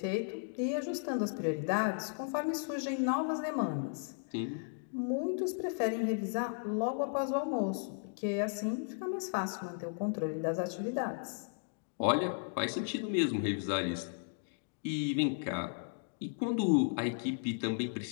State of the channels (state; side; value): silent; right; digital silence